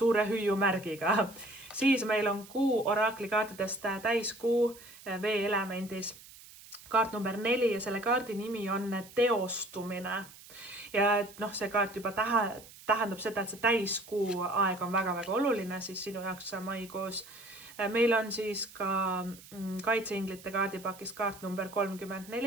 hüüumärgiga. Siis meil on kuu oraklikaartidest täiskuu veeelemendis. Kaart number 4 ja selle kaardi nimi on teostumine. Ja see kaart juba tähendab seda, et see täiskuu aeg on väga-väga oluline siis sinu jaoks maikuus. Meil on siis ka kaitseinglite kaardipakis kaart number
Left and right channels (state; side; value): noise; right; hiss, 19 dB below the sound